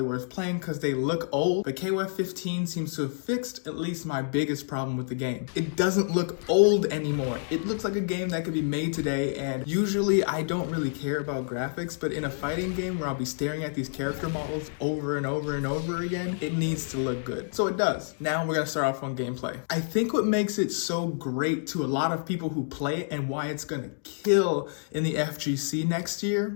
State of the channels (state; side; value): silent; right; digital silence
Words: worth playing because they look old, but KOF 15 seems to have fixed at least my biggest problem with the game. It doesn't look old anymore. It looks like a game that could be made today, and usually I don't really care about graphics, but in a fighting game where I'll be staring at these character models over and over and over again, it needs to look good. So it does. Now we're gonna start off on gameplay. I think what makes it so great to a lot of people who play it and why it's gonna kill in the FGC next